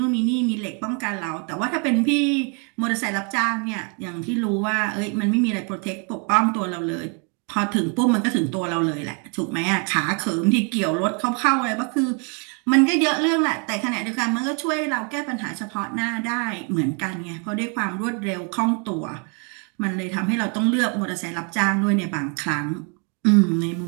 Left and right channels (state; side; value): quieter; left; 36.9 dB